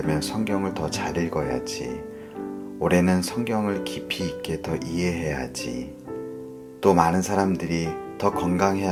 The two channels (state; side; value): identical; both; correlation 1.00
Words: 성경을 더 잘 읽어야지, 올해는 성경을 깊이 있게 더 이해해야지, 또 많은 사람들이 더